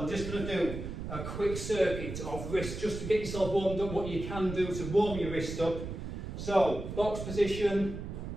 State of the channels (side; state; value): right; noise; rumble, 7 dB below the sound